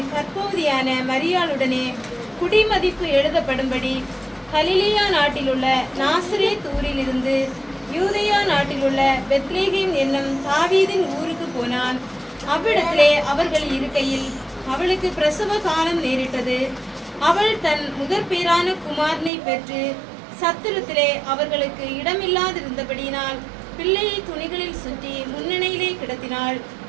கற்பவதியான மரியாளுடனே குடிமதிப்பு எழுதப்படும்படி கலிலேயா நாட்டிலுள்ள நாசரேத் ஊரிலிருந்து யூதேயா நாட்டிலுள்ள பெத்லேகேம் என்னும் தாவீதின் ஊருக்கு போனான். அவ்விடத்திலே அவர்கள் இருக்கையில் அவளுக்கு பிரசவ காலம் நேரிட்டது. அவள் தன் முதற்பேரான குமாரனை பெற்று சத்திரத்திலே அவர்களுக்கு இடமில்லாதிருந்தபடியினால் பிள்ளையை துணிகளில் சுற்றி முன்னணியிலே கிடத்தினாள்.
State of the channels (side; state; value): left; drops out; at 19.3 s